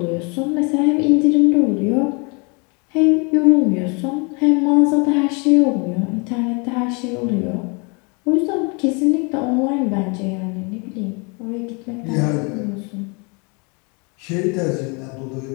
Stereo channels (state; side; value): quieter; right; 32.2 dB